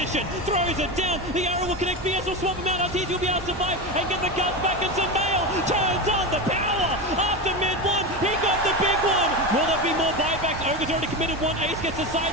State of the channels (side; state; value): both; normal; correlation 0.19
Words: Throws it down. The arrow will connect. BS will swap him out. Arteezy will be able to survive and get the guns back. And Sumail turns on the power. After mid one, he got the big one. Will there be more buybacks? Ogre's already committed one. Ace gets the